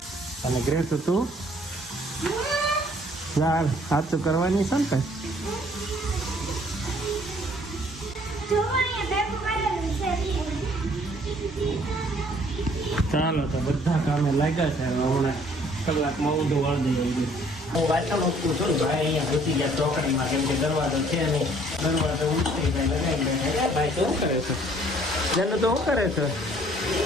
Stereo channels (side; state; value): both; normal; correlation 0.59